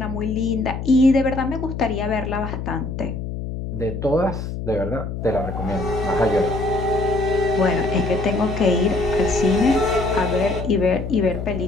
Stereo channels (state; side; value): noise; left; hum, 6 dB below the sound